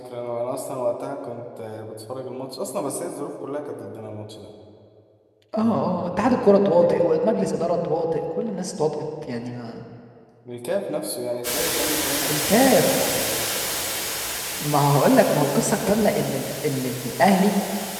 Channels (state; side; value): identical; both; correlation 1.00